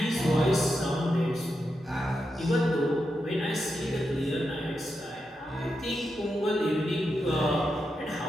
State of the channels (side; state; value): both; normal; correlation 0.86